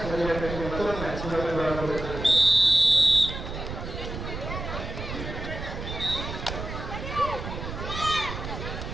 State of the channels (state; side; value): noise; right; rumble, 7 dB below the sound